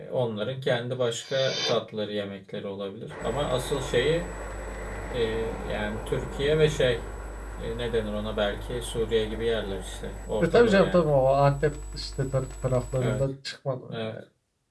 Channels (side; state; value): both; identical; correlation 1.00